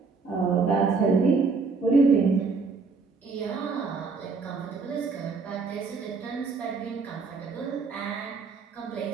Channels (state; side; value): quieter; left; 4.6 dB